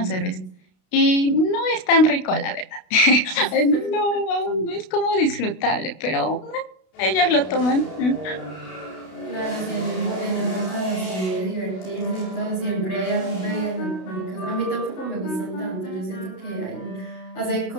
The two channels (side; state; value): right; late; 32 ms